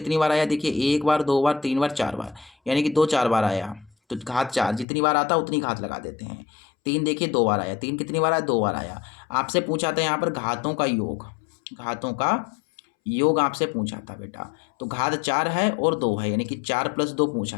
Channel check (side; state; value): right; drops out; at 4.9 s